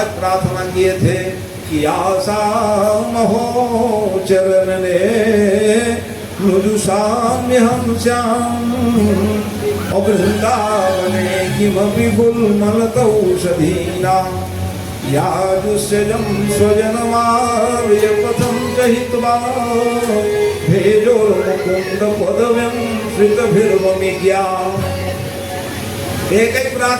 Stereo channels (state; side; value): identical; both; correlation 1.00